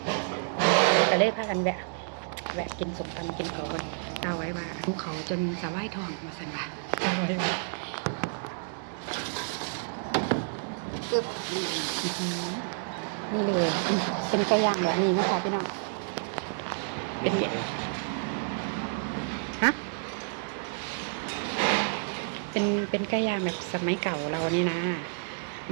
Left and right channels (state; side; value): silent; left; digital silence